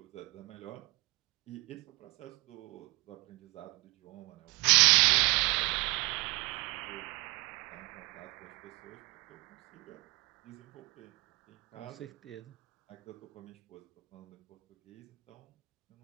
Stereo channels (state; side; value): quieter; left; 24.8 dB